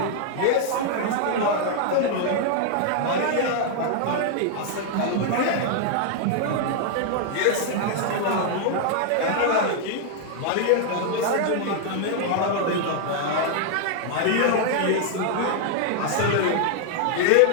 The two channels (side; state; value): both; different; correlation 0.00